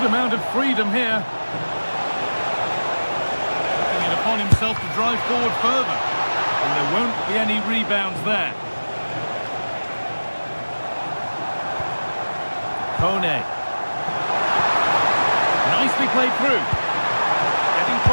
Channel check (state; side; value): inverted; both; correlation -1.00